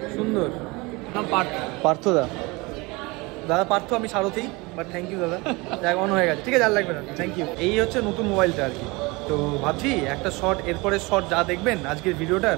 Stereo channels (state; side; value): quieter; left; 24.9 dB